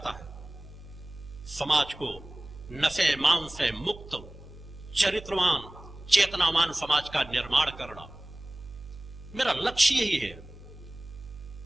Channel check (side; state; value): right; noise; hum, 17 dB below the sound